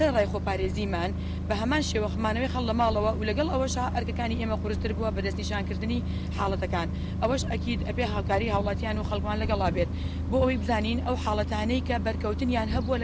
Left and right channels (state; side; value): identical; both; correlation 1.00